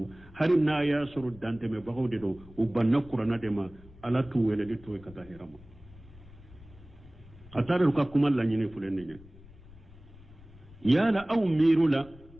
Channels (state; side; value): noise; left; rumble, 21 dB below the sound